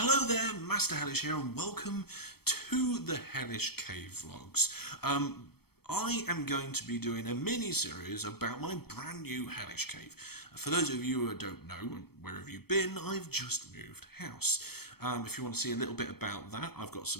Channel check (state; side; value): late; right; 0.96 ms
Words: there, Master Hellish here, and welcome to the Hellish Cave Vlogs. I am going to be doing a mini-series about my brand new Hellish Cave. For those of you who don't know, where have you been? I've just moved house. If you want to see a little bit about that, I've got